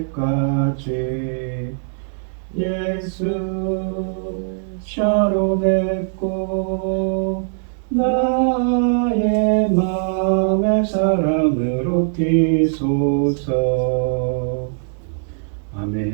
예수 샤론의 꽃 나의 맘의 사랑으로 피소서.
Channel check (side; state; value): left; silent; digital silence